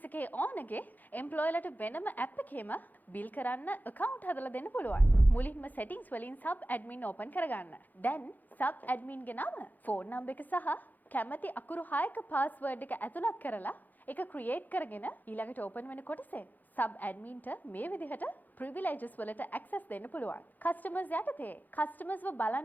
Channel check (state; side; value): late; right; 0.084 ms